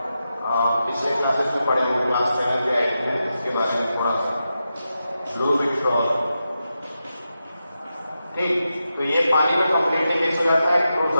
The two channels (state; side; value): inverted; both; correlation -0.89